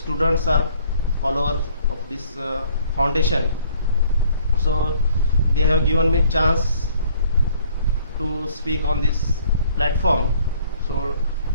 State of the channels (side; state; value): both; inverted; correlation -0.59